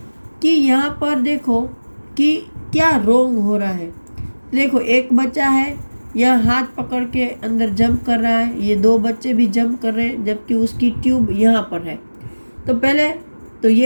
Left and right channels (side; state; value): both; inverted; correlation -1.00